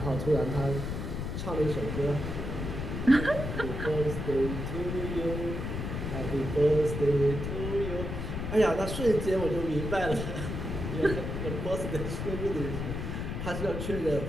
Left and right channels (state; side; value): noise; left; rumble, 4 dB below the sound